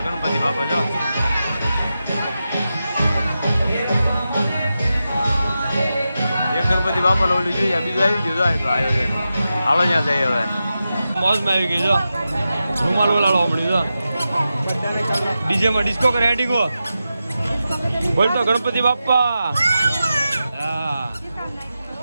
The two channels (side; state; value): both; inverted; correlation -0.91